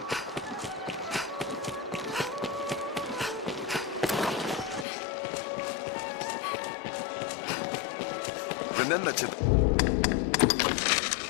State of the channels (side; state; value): right; drops out; at 4.9 s